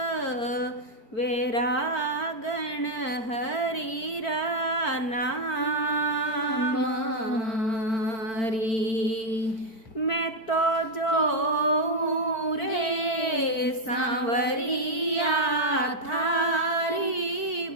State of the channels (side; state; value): right; late; 4.5 ms